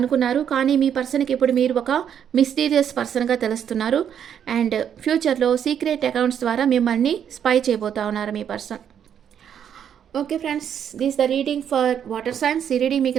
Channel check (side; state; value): left; quieter; 8.8 dB